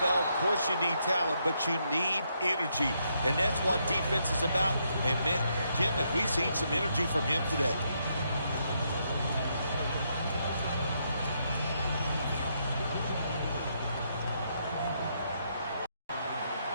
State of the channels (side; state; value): both; inverted; correlation -0.77